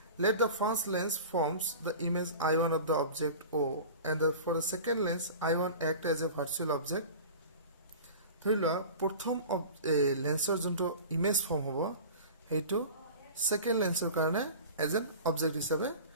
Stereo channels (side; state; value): both; inverted; correlation -0.37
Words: let the first lens forms the image I1 of the object O and for the second lens I1 act as a virtual object ধৰি লোৱা প্ৰথম লেন্সৰ যোনটো image form হ'ব সেইটো সেকেন্ড লেন্সৰ কাৰণে এজ এন অবজেক্ট হিচাপে